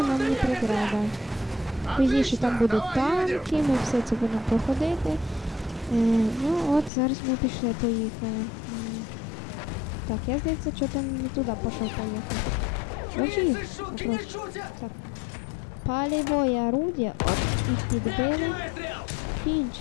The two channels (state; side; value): drops out; right; at 6.9 s